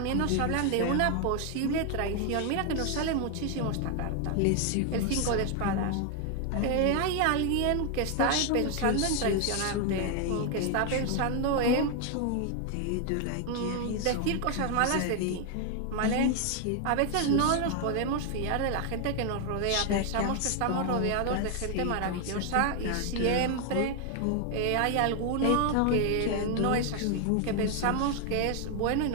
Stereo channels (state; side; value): different; both; correlation 0.01